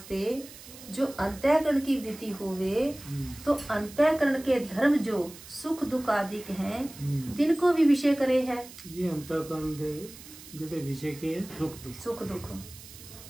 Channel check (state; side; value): noise; right; hiss, 17 dB below the sound